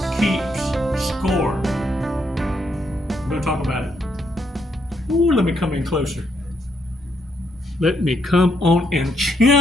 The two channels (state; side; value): normal; both; correlation 0.76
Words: keeps score. I'm going to talk about it. Ooh, let me come in closer. Let me come on and